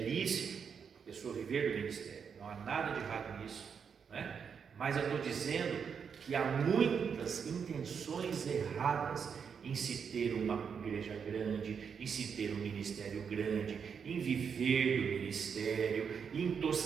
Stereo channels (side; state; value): left; quieter; 6.7 dB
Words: a pessoa viver do ministério. Não há nada de errado nisso, né? Mas eu estou dizendo que há muitas intenções erradas em se ter uma igreja grande, em se ter um ministério grande, em viver do ministério, em